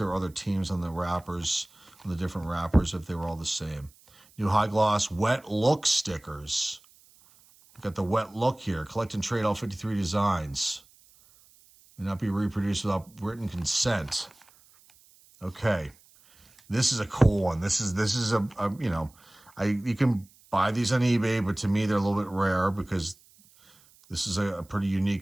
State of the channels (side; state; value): right; noise; hiss, 28 dB below the sound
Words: were other teams on the wrappers, on the different wrappers, if they were all the same. New high gloss wet look stickers. We've got the wet look here. Collect and trade all 53 designs. May not be reproduced without written consent. Okay, this is a cool one. This is a you know, you can buy these on eBay, but to me they're a little bit rare because this is a pretty